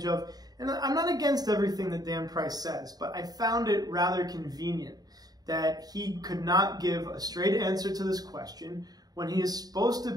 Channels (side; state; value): left; late; 0.19 ms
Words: of. And I'm not against everything that Dan Price says, but I found it rather convenient that he could not give a straight answer to this question when he is supposed to